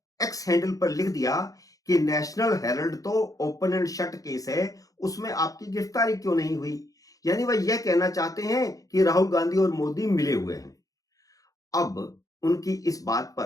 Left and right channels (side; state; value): right; late; 0.17 ms